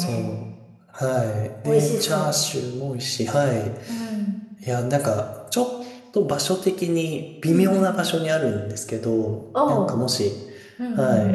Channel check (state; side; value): identical; both; correlation 1.00